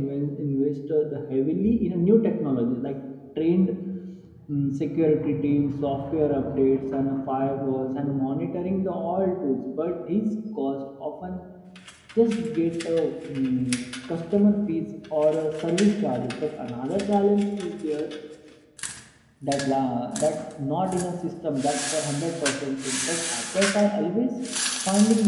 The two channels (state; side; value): identical; both; correlation 1.00